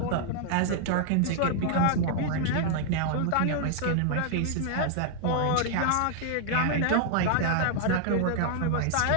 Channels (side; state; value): both; different; correlation 0.00